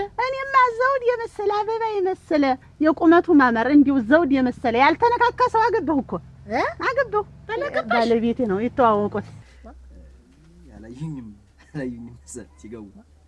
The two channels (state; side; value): identical; both; correlation 1.00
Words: እኔማ ዘውድ የመሰለ አበባ የመሰለ የቁመቱ ማመር እንዲሁ ዘውድ የመሰለ ያልተነካካ ሰው አገባሁ እኮ አገባሁ። ባለቤቴ ነው የተዋወቁት። ያላዩኝም ሲገቡ